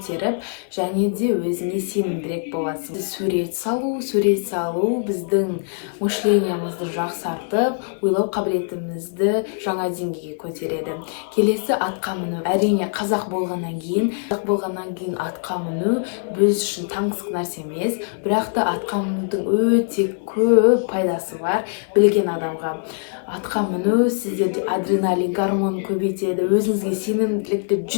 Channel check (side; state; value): right; silent; 58 dB below the other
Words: және де өзіңе сенімдірек боласың. Сурет салу біздің мышлениемізді жақсартып, ойлау қабілетімізді жаңа деңгейге көтереді. Келесі атқа міну. Әрине қазақ болғаннан кейін атқа міну біз үшін таңсық нәрсе емес, бірақ та атқа мінудің өте көп пайдасы бар білген адамға. Атқа міну сіздерде адреналин гормонын көбейтеді, өзіңізге сенімділікті